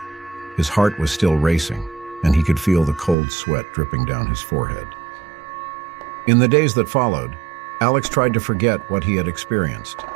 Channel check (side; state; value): left; drops out; at 3.2 s